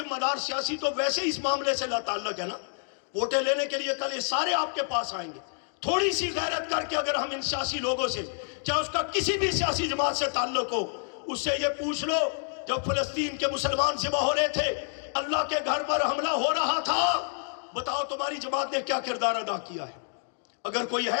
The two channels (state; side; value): silent; right; digital silence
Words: دار سیاسی تو ویسے اس معاملے سے لا تعلق ہے نا. ووٹیں لینے کے لیے کل یہ سارے آپ کے پاس آئیں گے. تھوڑی سی غیرت کر کے اگر ہم ان سیاسی لوگوں سے، چاہے اس کا کسی بھی سیاسی جماعت سے تعلق ہو، اس سے یہ پوچھ لو جب فلسطین کے مسلمان ذبح ہو رہے تھے، اللہ کے گھر پر حملہ ہو رہا تھا، بتاؤ تمہاری جماعت نے کیا کردار ادا کیا ہے؟ اگر کوئی